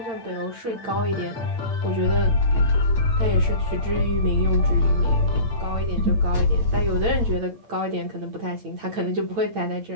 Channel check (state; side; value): late; left; 8.8 ms